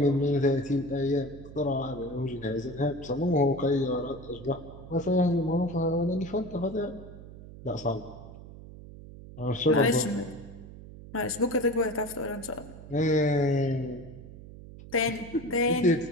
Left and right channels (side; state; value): right; noise; hum, 16 dB below the sound